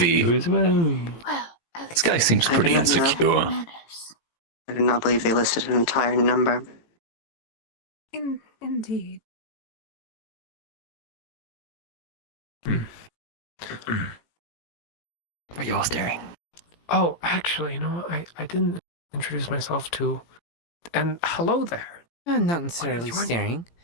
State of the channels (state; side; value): late; right; 17 ms